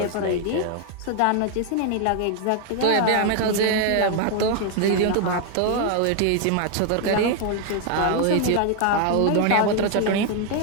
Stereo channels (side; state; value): both; different; correlation 0.00